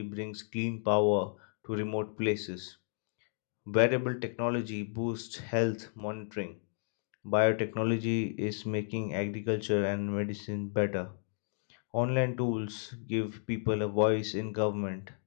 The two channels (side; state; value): right; silent; digital silence